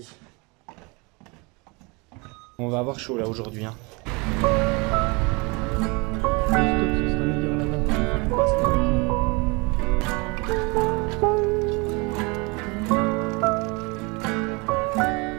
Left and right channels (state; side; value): quieter; left; 28.1 dB